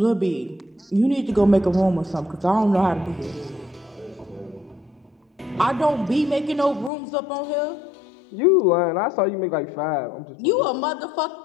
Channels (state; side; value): drops out; right; at 6.9 s